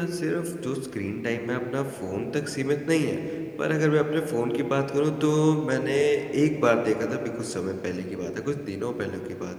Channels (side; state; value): both; identical; correlation 1.00